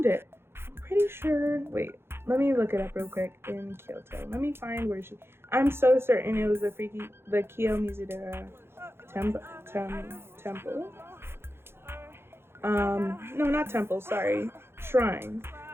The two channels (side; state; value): left; late; 0.11 ms